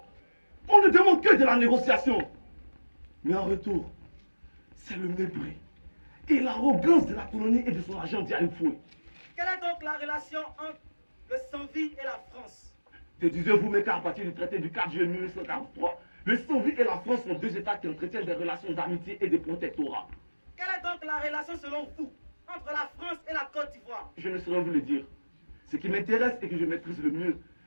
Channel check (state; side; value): inverted; both; correlation -1.00